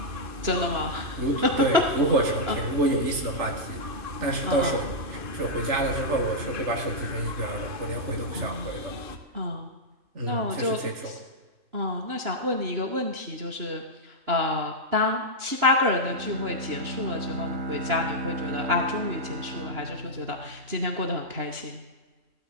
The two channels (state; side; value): late; left; 2.9 ms